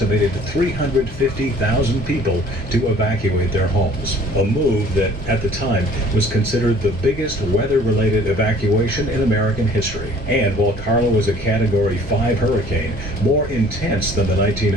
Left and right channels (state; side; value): normal; both; correlation 0.53